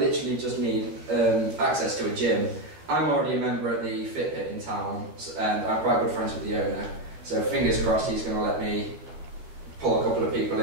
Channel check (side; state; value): left; late; 12 ms